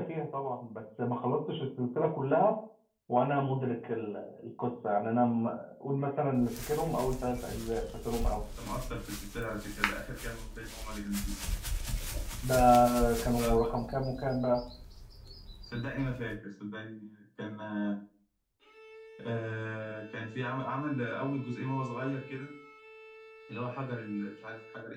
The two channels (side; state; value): both; identical; correlation 1.00